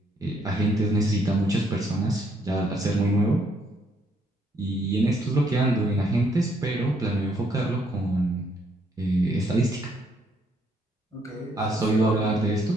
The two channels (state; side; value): normal; both; correlation 0.70